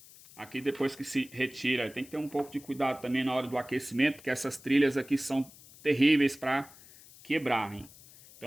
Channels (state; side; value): noise; left; hiss, 21 dB below the sound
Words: aqui depois que se retira, tem que ter um pouco de cuidado também na hora do aquecimento, porque essas trilhas aqui são terríveis para quebrarem.